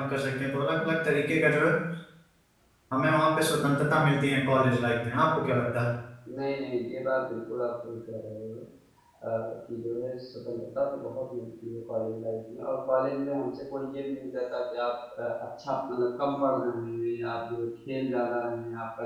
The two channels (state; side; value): identical; both; correlation 1.00